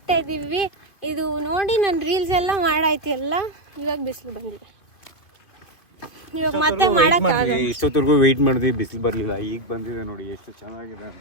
ಇದ್ದೀವಿ. ಇದು ನೋಡಿ, ನನ್ನ ರೀಲ್ಸ್ ಎಲ್ಲ ಮಾಡಾಯ್ತು ಎಲ್ಲ. ಇವಾಗ ಬಿಸಿಲು ಬಂದಿದೆ. ಇವಾಗ ಮತ್ತೆ ಮಾಡಕ್ಕಾಗಲ್ಲ. ಇಷ್ಟೊತ್ತರೆಗೂ ವೆಯ್ಟ್ ಮಾಡಿದ್ವಿ, ಬಿಸಿಲು ಬರಲಿಲ್ಲ. ಈಗ ಬಂದಿದೆ ನೋಡಿ ಎಷ್ಟು ಚೆನ್ನಾಗಿದೆ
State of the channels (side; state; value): right; late; 2.6 ms